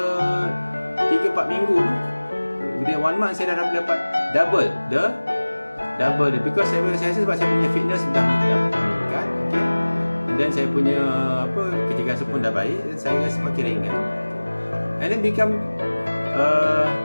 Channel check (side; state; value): both; inverted; correlation -1.00